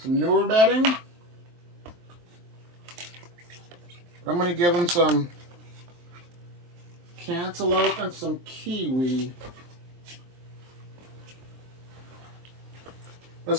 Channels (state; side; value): late; left; 23 ms